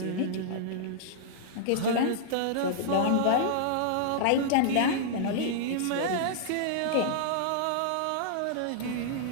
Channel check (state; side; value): different; both; correlation -0.01